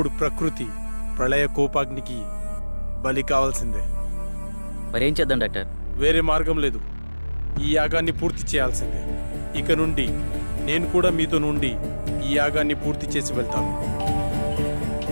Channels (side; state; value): both; inverted; correlation -1.00